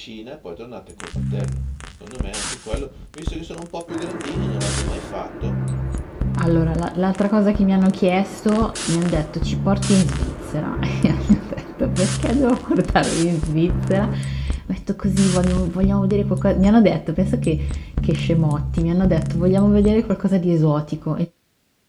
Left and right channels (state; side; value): identical; both; correlation 1.00